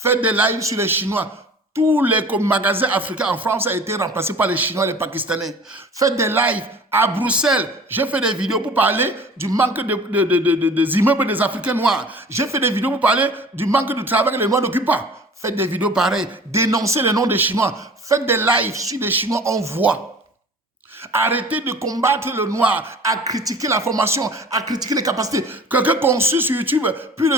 des lives sur les Chinois. Tous les magasins africains en France ont été remplacés par les Chinois et les Pakistanais. Faites des lives à Bruxelles. J'ai fait des vidéos pour parler du manque des immeubles des Africains noirs. J'ai fait des vidéos pour parler du manque de travail que les Noirs n'occupent pas. Faites des vidéos pareilles. Dénoncez le nom des Chinois. Faites des lives sur les Chinois, on voit. Arrêtez de combattre le noir, à critiquer la formation, à critiquer les capacités. Quelqu'un conçu sur YouTube plus de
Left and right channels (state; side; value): normal; both; correlation 0.44